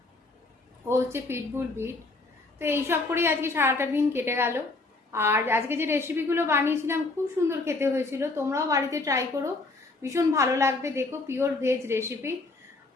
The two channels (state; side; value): quieter; right; 3.3 dB